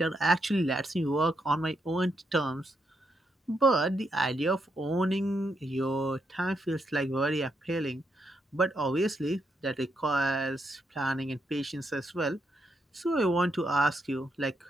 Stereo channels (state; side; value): normal; both; correlation 0.79